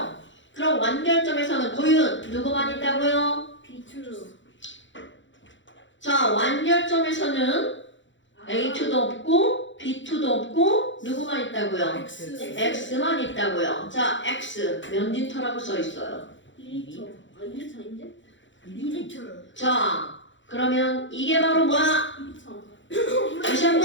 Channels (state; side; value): late; right; 0.54 ms